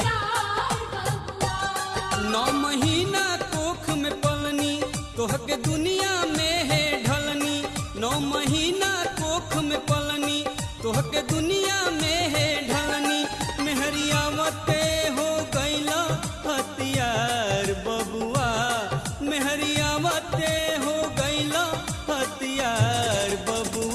9 महीना कोख में पलनी तोहके दुनिया में है ढलनी 9 महीना कोख में पलनी तोहके दुनिया में है ढलनी मेहरियावते हो गईला हथियार बबुआ मेहरियावते हो गईला हथियार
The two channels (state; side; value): identical; both; correlation 1.00